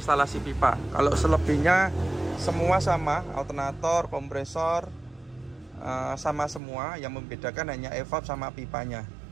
pipa. Kalau selebihnya semua sama, alternator, kompresor sama semua. Yang membedakan hanya evap sama pipanya.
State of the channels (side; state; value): left; drops out; at 6.6 s